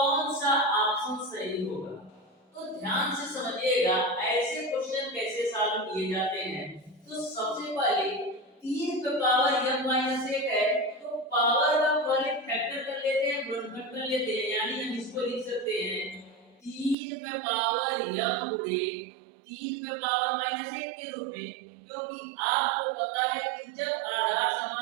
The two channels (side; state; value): left; drops out; at 16.9 s